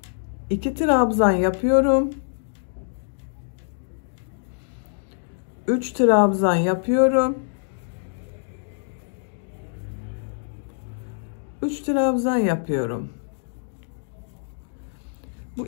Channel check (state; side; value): silent; right; digital silence